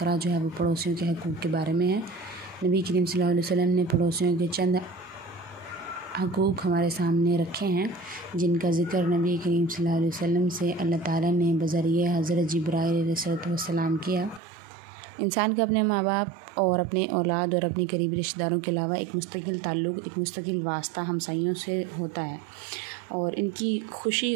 जो है वो पड़ोसियों के हक़ूक़ के बारे में है। नबी करीम सल्लल्लाहु अलैहि वसल्लम ने पड़ोसियों के चंद हक़ूक़ हमारे सामने रखे हैं, जिनका ज़िक्र नबी करीम सल्लल्लाहु अलैहि वसल्लम से अल्लाह ताला ने बज़रिए हज़रत जिब्राईल अलैहिस्सलाम किया। इंसान का अपने माँ बाप और अपने औलाद और अपने करीबी रिश्तेदारों के अलावा एक मुस्तकिल ताल्लुक़, एक मुस्तकिल वास्ता हमसायों से होता है और इनकी खुशी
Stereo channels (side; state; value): left; drops out; at 14.4 s